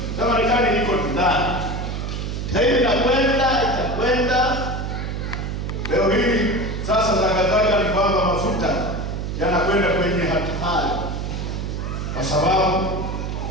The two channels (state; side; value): noise; right; hum, 4 dB below the sound